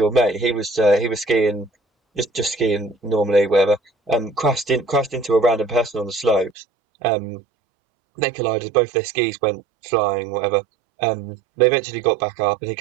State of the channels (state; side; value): drops out; left; at 6.6 s